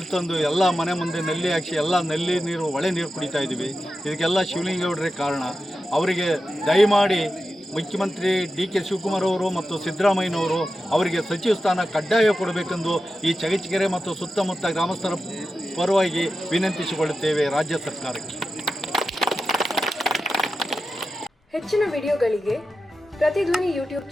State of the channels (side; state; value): both; normal; correlation 0.91